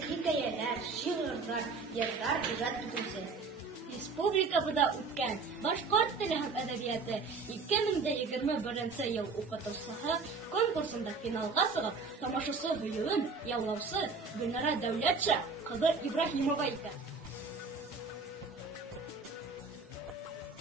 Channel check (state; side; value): quieter; left; 4.4 dB